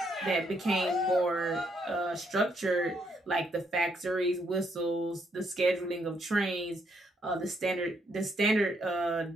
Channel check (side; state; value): both; normal; correlation 0.73